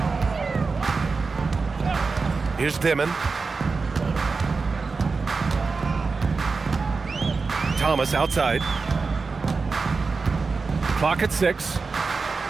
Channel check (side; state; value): left; quieter; 4.4 dB